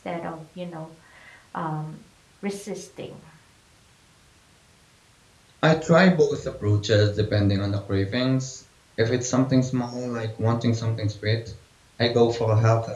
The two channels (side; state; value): both; identical; correlation 1.00